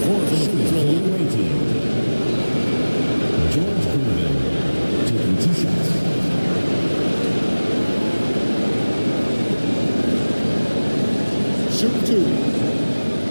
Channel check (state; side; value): inverted; both; correlation -1.00